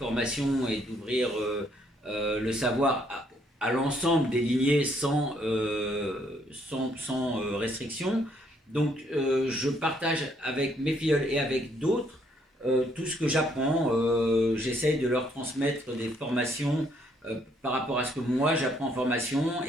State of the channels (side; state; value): both; normal; correlation 0.69